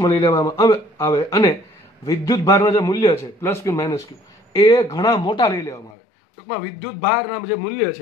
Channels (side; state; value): right; drops out; at 6.0 s